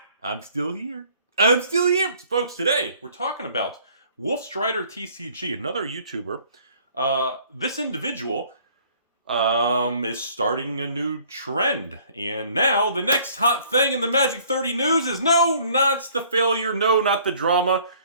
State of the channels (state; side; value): inverted; both; correlation -0.58